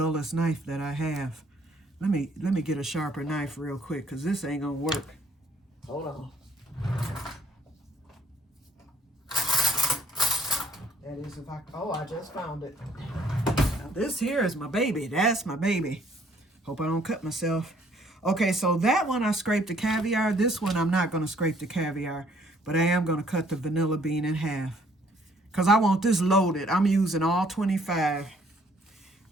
knife that I have. Let me get a sharper knife real quick because this ain't gonna work. Hold on. That is if I just found it. Now this here is my baby. That's my baby. Hope I don't cut myself. Okay, so that one I scraped the caviar. This one I'm not gonna scrape the caviar, but I am gonna cut the vanilla bean in half. Because I want this loaded. I'm using all 25.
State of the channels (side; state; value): both; normal; correlation 0.62